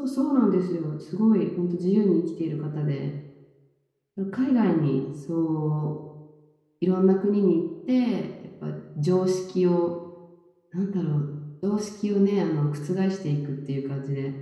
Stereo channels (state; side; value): identical; both; correlation 1.00